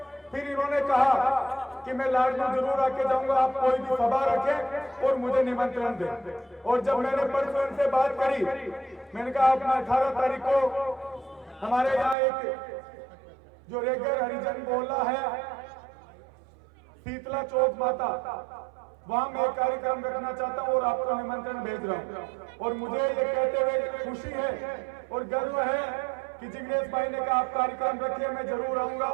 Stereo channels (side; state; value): left; drops out; at 12.2 s